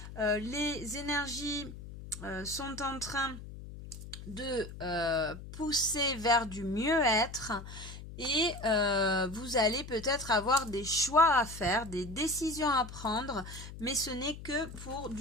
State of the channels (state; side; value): noise; left; hum, 12 dB below the sound